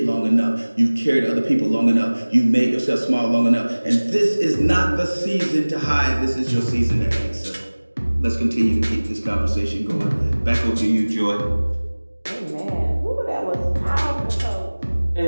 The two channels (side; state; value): both; inverted; correlation -1.00